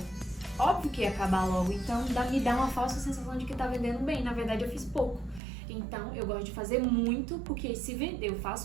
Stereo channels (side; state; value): left; drops out; at 5.4 s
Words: Óbvio que ia acabar logo, então me dá uma falsa sensação de que tá vendendo bem. Na verdade, eu fiz pouco. Então, eu gosto de fazer muito, porque se vender, eu